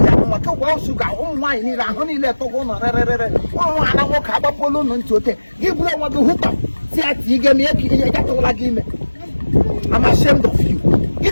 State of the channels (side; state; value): both; inverted; correlation -1.00